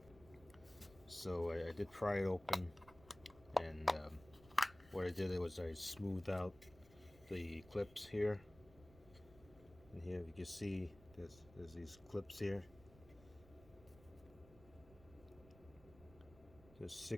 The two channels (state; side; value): noise; right; rumble, 22 dB below the sound